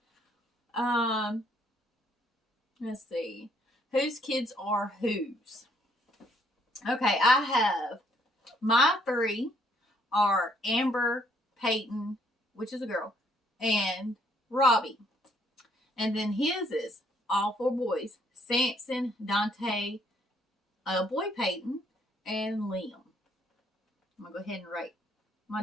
Let's see. Whose kids are whose? Okay, I have my 3 are Amber, Peyton, which is a girl, and Robbie. And then his is all 4 boys. Sampson, Dante, a boy Payton, and Liam. I'm going to go ahead and write my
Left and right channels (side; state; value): both; normal; correlation 0.67